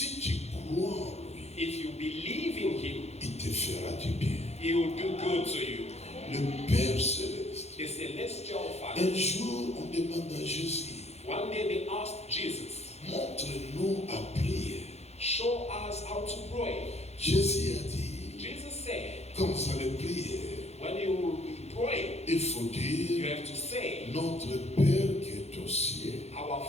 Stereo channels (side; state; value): right; late; 0.31 ms